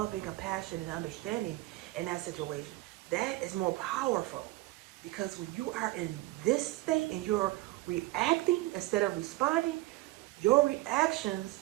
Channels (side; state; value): left; quieter; 19.2 dB